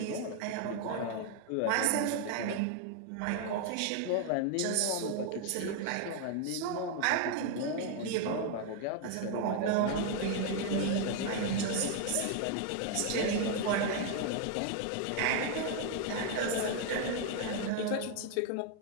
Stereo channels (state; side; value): different; both; correlation 0.00